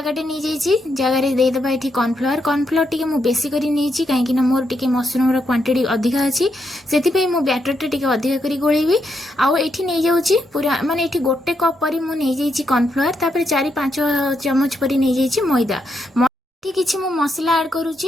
नहीं जाइए, जगार देदेबा ये कॉर्नफ्लावर। कॉर्नफ्लावर टी मु बेसी करी नहीं कहीं मोर टी मशरूम क्वांटिटी अधिका अच्छी, से मु बैटर टी अधिका करी गोलेबी। आउ एठी नहीं जाऊँगी पूरा माने एठी गोटे कप पर मु नहीं जाइए कॉर्नफ्लावर, तापर 4-5 चमच पर नहीं जाइए मैदा। किछि मु मसला ऐड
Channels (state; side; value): normal; both; correlation 0.80